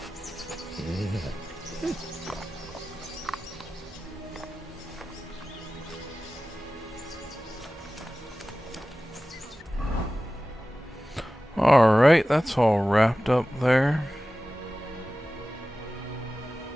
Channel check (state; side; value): normal; both; correlation 0.96